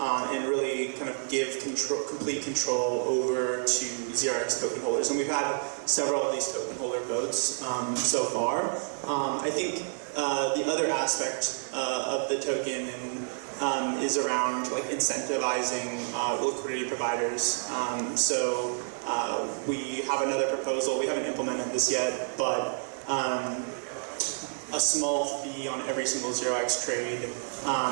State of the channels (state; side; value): silent; left; digital silence